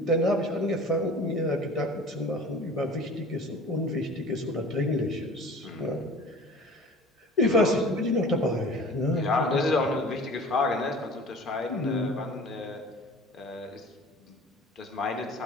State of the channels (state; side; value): normal; both; correlation 0.42